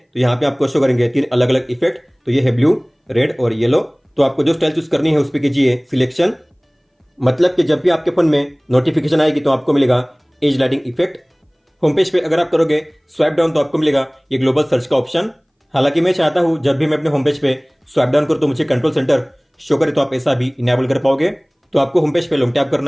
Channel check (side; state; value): both; identical; correlation 1.00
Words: यहाँ पे आपको शो करेंगे 3 अलग अलग इफेक्ट। तो ये है ब्लू, रेड और येलो। तो आपको जो स्टाइल चूज करनी है उस पर कीजिए सिलेक्शन, मतलब कि जब भी आपके फोन में नोटिफिकेशन आएगी तो आपको मिलेगा as lighting effect. Home page पे अगर आप करोगे स्वाइप डाउन तो आपको मिलेगा ये ग्लोबल सर्च का ऑप्शन। हालांकि मैं चाहता हूं जब भी मैं अपने होम पेज पे स्वाइप डाउन करूं तो मुझे कंट्रोल सेंटर शो करे, तो आप ऐसा भी इनेबल कर पाओगे। तो आपको होम पेज पे लॉन्ग टैप